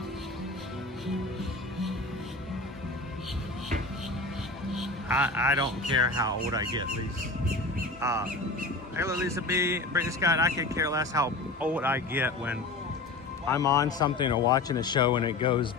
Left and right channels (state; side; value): quieter; right; 3.3 dB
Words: I don't care how old I get, Lisa. Hello, Lisa B. Brittany Scott, I could care less how old I get when I'm on something or watching a show and it goes